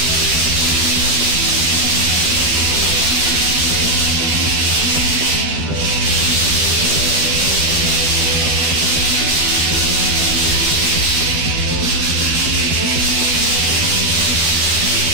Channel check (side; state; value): left; late; 12 ms